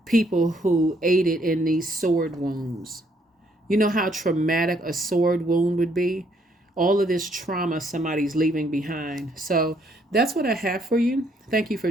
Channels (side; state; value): both; normal; correlation 0.69